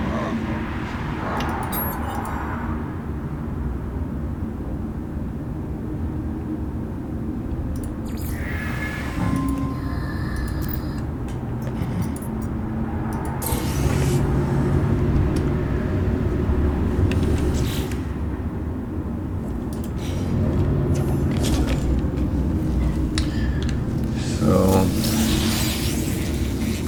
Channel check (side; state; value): both; identical; correlation 1.00